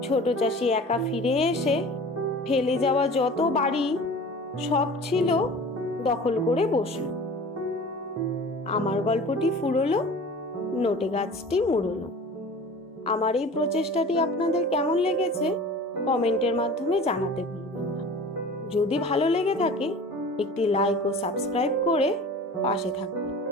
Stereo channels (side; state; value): both; normal; correlation 0.41